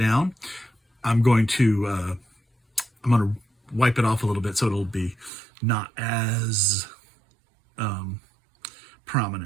I'm going to wipe it off a little bit so it'll be not as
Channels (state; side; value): drops out; left; at 5.3 s